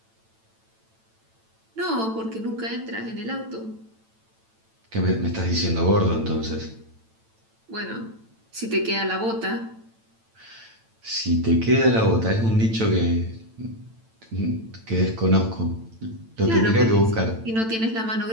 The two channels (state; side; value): late; left; 9.0 ms